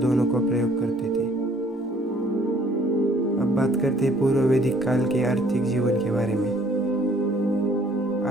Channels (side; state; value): both; normal; correlation 0.60